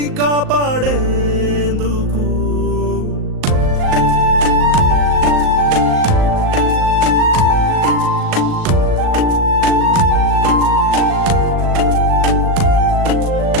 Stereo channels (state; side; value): late; left; 38 ms